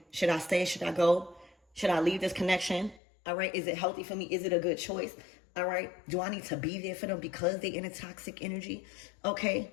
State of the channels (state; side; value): drops out; right; at 3.0 s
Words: Should I stay? Should I go? Should I leave this connection? All right. Is it healthy for me? Is it a good choice? All right. Do I need to be there for them because they're in a toxic energy? Okay.